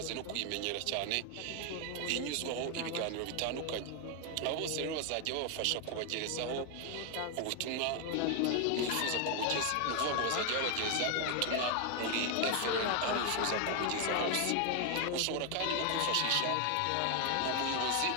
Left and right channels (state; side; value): different; both; correlation 0.00